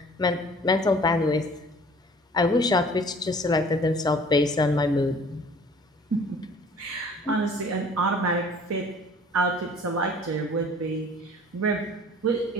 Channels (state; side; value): normal; both; correlation 0.50